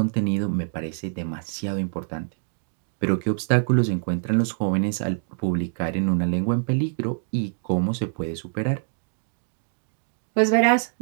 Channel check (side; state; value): left; silent; digital silence